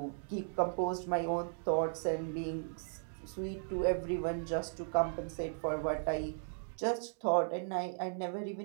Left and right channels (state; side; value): silent; left; digital silence